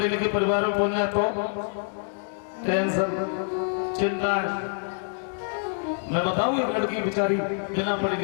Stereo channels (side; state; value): right; silent; 61 dB below the other